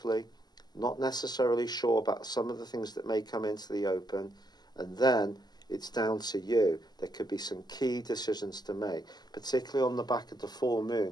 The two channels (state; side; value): late; right; 0.20 ms